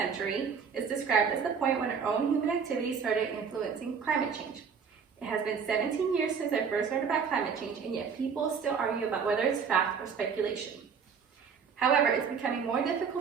is described as the point when our own human activities started influencing climate change. It has been 17 years since I first learned about climate change, and yet people still argue about whether it's fact or speculation. However, it's becoming more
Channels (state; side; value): quieter; left; 6.3 dB